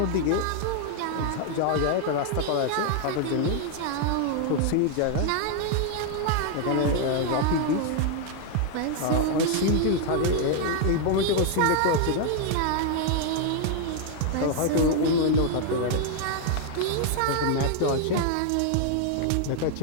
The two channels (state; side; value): different; both; correlation 0.00